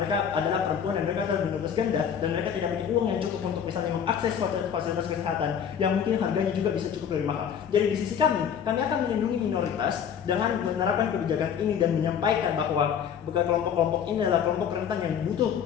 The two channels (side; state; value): right; quieter; 8.1 dB